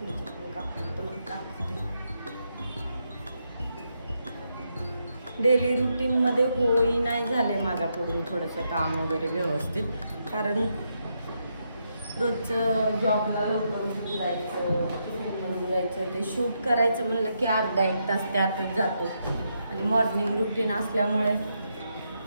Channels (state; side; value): inverted; both; correlation -0.81